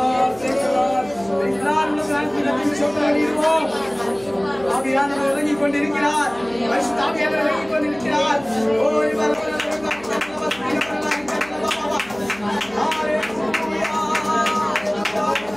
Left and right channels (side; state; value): right; noise; hum, 21 dB below the sound